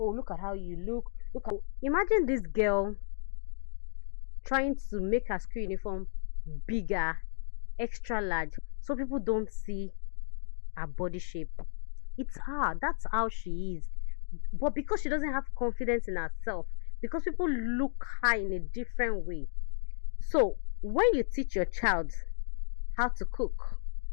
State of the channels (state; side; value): silent; right; digital silence